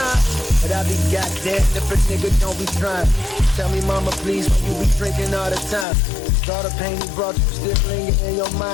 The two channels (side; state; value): right; drops out; at 5.9 s